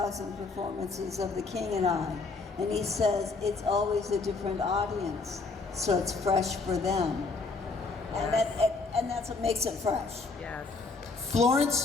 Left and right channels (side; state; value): right; quieter; 4.0 dB